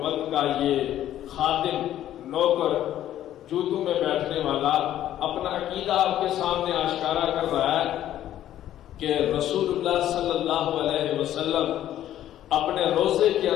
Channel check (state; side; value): quieter; right; 12.2 dB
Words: کا یہ خادم، نوکر، جوتوں میں بیٹھنے والا اپنا عقیدہ آپ کے سامنے آشکارا کر رہا ہے کہ رسول اللہ صلی اللہ علیہ وسلم اپنے روزے کے